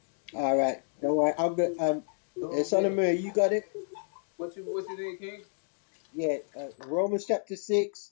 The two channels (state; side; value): silent; right; digital silence